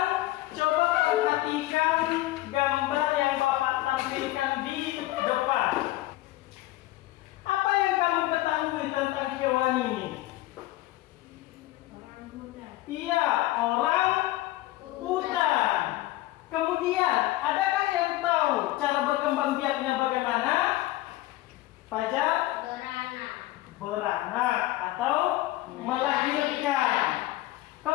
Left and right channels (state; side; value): quieter; right; 17.1 dB